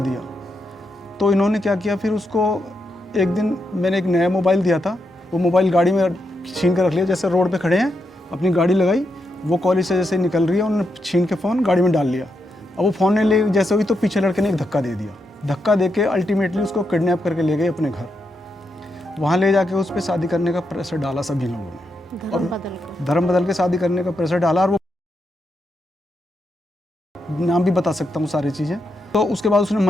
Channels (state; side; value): normal; both; correlation 0.83